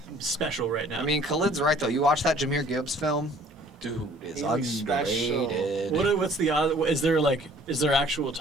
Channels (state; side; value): normal; both; correlation 0.54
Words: special right now. I mean, Khalid's right, though. You watch that Jumeirah Gibbs film? Dude is He's special. underrated. what's the odd? Is there actual